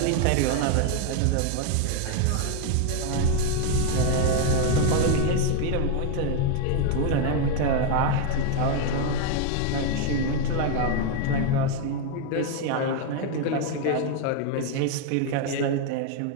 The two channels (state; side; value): different; both; correlation 0.01